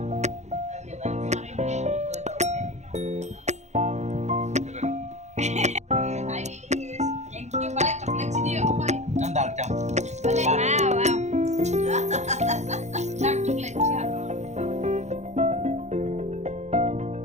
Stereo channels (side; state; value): left; late; 0.33 ms